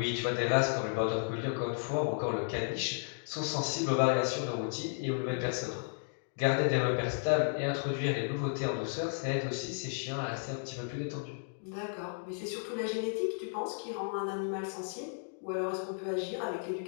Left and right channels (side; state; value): right; silent; digital silence